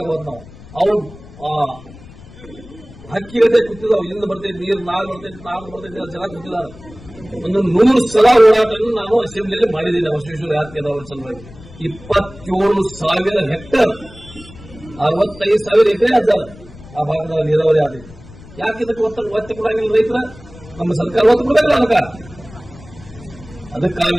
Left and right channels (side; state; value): left; noise; rumble, 19 dB below the sound